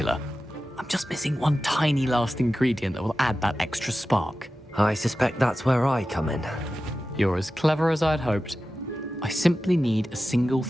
I'm just missing one tiny last ingredient that will add that extra spark. I suspect that's where I come in. You're as clever as I'd hoped. I simply need a single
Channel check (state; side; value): normal; both; correlation 0.94